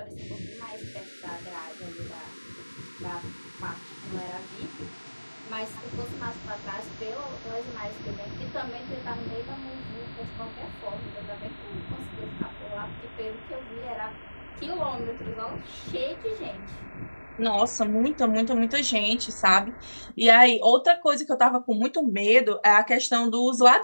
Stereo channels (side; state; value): both; inverted; correlation -1.00